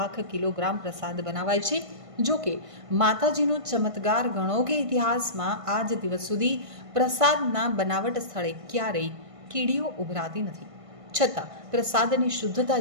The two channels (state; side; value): late; left; 1.5 ms